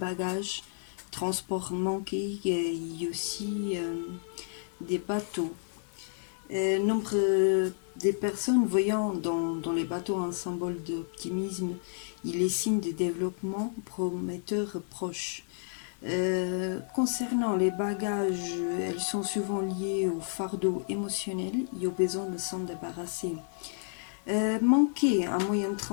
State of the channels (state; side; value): silent; right; digital silence